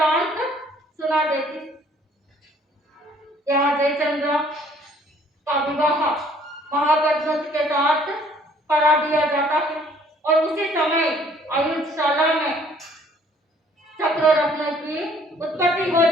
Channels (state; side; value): normal; both; correlation 0.59